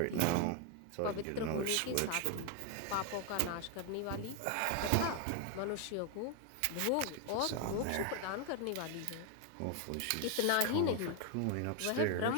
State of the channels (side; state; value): both; different; correlation 0.01